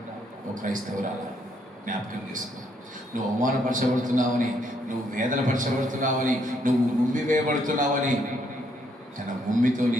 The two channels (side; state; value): both; normal; correlation 0.72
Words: ఒక క్రైస్తవురాలా జ్ఞాపకం చేసుకో. నువ్వు అవమానపరచబడుతున్నావని, నువ్వు వేదనపరచబడుతున్నావని, నువ్వు ఉమ్మి వేయబడుతున్నావని తన ఉమ్మితో నీ